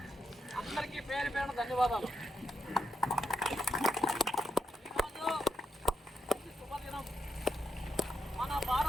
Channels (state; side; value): normal; both; correlation 0.83